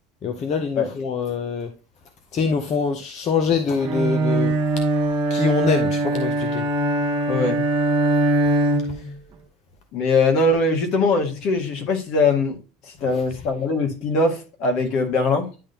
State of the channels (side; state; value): both; normal; correlation 0.45